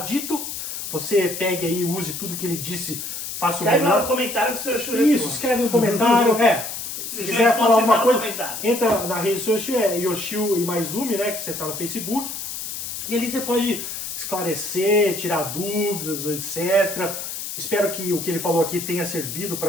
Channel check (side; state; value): left; noise; hiss, 6 dB below the sound